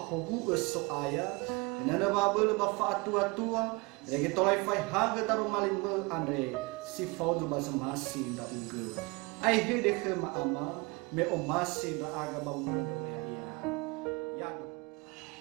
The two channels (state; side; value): quieter; left; 26.9 dB